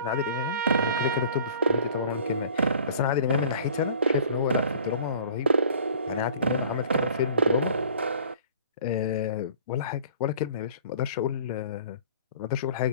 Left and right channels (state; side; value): inverted; both; correlation -0.48